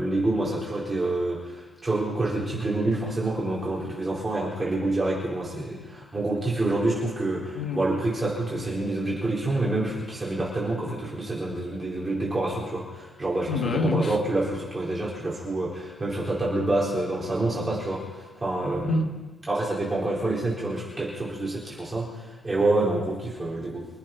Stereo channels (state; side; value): normal; both; correlation 0.83